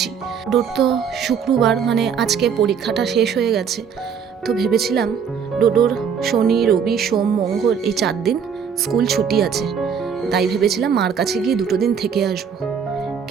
ডোর তো শুক্রবার, মানে আজকে পরীক্ষাটা শেষ হয়ে গেছে, তো ভেবেছিলাম ডোডোর শনি রবি সোম মঙ্গল এই 4 দিন স্কুল ছুটি আছে, তাই ভেবেছিলাম মার কাছে গিয়ে 2 দিন থেকে আসবো।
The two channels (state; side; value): quieter; left; 7.0 dB